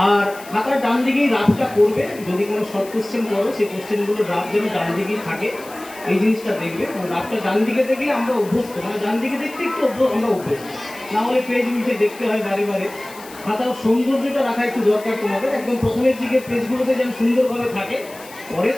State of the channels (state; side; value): noise; left; hiss, 19 dB below the sound